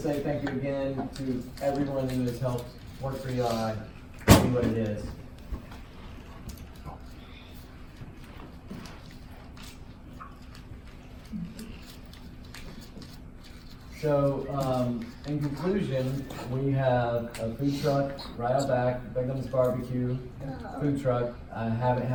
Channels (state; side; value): identical; both; correlation 1.00